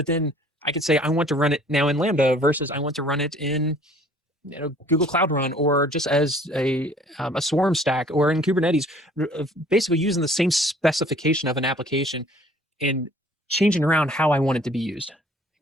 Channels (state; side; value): normal; both; correlation 0.54